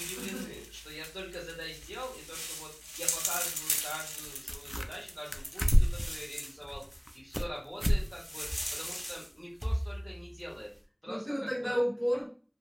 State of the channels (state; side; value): identical; both; correlation 1.00